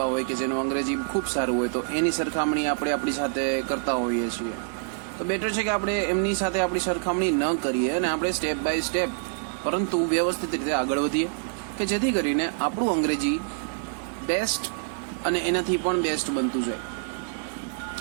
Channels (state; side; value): silent; left; digital silence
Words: હોય કે જેનું અંગ્રેજી ખૂબ સારું હોય, તો એની સરખામણી આપણે આપણી સાથે કરતા હોઈએ છીએ. તો બેટર છે કે આપણે એમની સાથે આપણી સરખામણી ન કરીએ અને આપણે સ્ટેપ બાય સ્ટેપ પરંતુ વ્યવસ્થિત રીતે આગળ વધીએ કે જેથી કરીને આપણું અંગ્રેજી બેસ્ટ અને એનાથી પણ બેસ્ટ બનતું જાય.